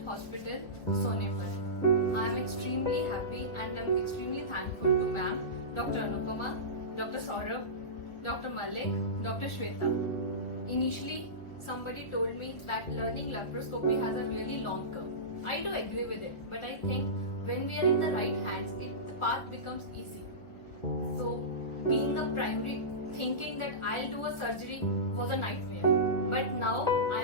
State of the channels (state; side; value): late; right; 1.4 ms